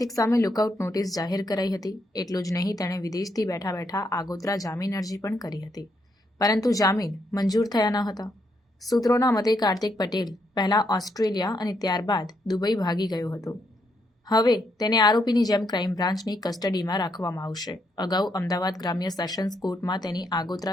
સામે લુકઆઉટ નોટિસ જાહેર કરાઈ હતી। એટલું જ નહીં, તેણે વિદેશથી બેઠા બેઠા આગોતરા જામીન અરજી પણ કરી હતી, પરંતુ જામીન મંજૂર થયા ન હતા। સૂત્રોના મતે કાર્તિક પટેલ પહેલા ઓસ્ટ્રેલિયા અને ત્યારબાદ દુબઈ ભાગી ગયો હતો। હવે તેને આરોપીની જેમ ક્રાઇમ બ્રાન્ચની કસ્ટડીમાં રાખવામાં આવશે। અગાઉ અમદાવાદ ગ્રામ્ય સેશન્સ કોર્ટમાં તેની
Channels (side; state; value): both; normal; correlation 0.77